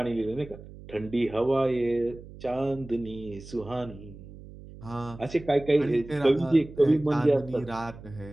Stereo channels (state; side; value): noise; right; hum, 17 dB below the sound